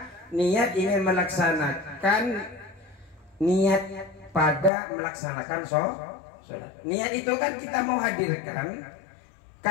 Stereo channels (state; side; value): drops out; right; at 4.7 s